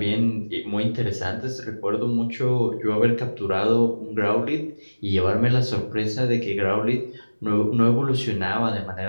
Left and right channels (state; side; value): inverted; both; correlation -1.00